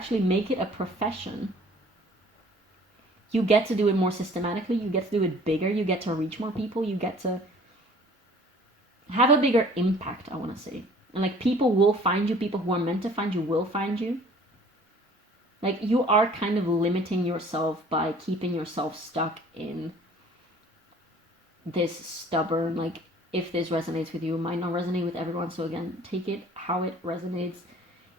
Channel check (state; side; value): normal; both; correlation 0.51